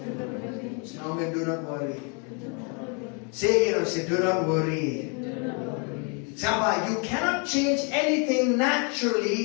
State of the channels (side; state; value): right; quieter; 36.2 dB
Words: Say amen, do not worry. Say again, say do not worry. Samba, you cannot change anything